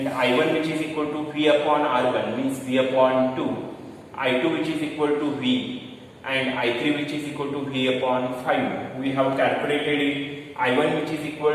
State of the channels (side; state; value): both; identical; correlation 1.00